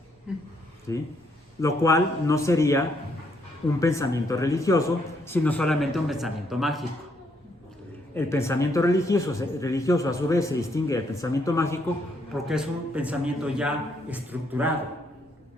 ¿Sí? Lo cual no sería un pensamiento religioso, sino solamente un pensamiento mágico. El pensamiento religioso a su vez se distingue del pensamiento mágico porque es un pensamiento ya estructurado,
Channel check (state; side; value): normal; both; correlation 0.73